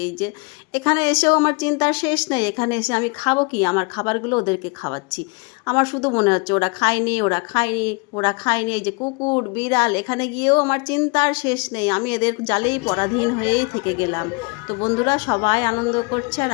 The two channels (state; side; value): quieter; right; 30.7 dB